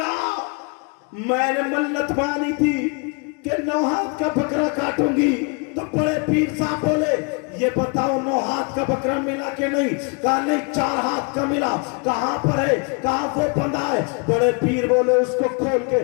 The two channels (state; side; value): quieter; right; 34.0 dB